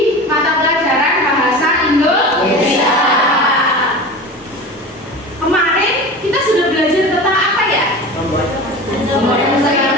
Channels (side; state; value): both; normal; correlation 0.32